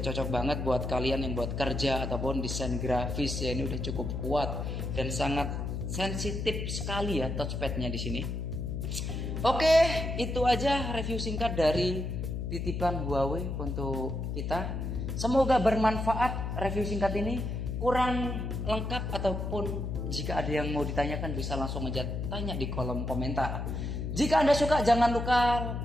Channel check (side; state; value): left; noise; hum, 3 dB below the sound